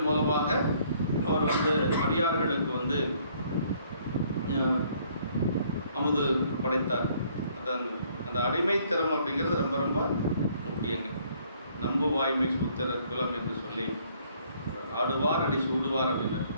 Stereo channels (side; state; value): both; inverted; correlation -0.64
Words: மூலமாக அவர் வந்து அடியார்களுக்கு வந்து அமுது படைத்தார். அதான் அந்த அடிமைத்திறம் அப்படிங்கிறது ரொம்ப ரொம்ப முக்கியங்க. நம்பு வாய்மை சூத்திர குலம் என்று சொல்லி ஆடுவார் அடி சூடுவார் அப்படின்னு.